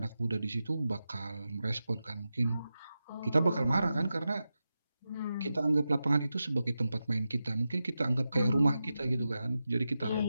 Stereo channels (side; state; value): both; inverted; correlation -0.91